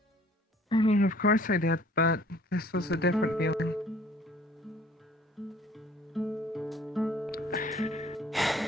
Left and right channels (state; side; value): normal; both; correlation 0.55